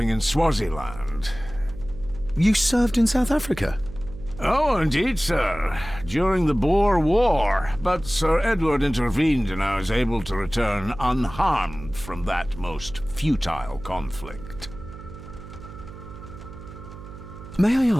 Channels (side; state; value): right; noise; hum, 14 dB below the sound